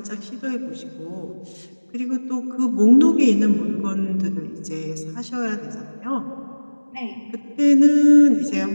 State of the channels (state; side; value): inverted; both; correlation -1.00